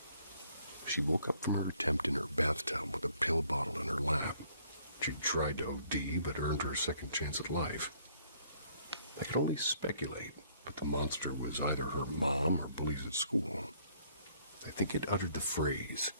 She woke up from her attempt in her bathtub with a pill bottle in her lap. She tried to OD, but earned her second chance at life. I could only speculate, but the monster was either her mom or bullies at school. I think it uttered the phrase,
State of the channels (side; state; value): both; inverted; correlation -0.63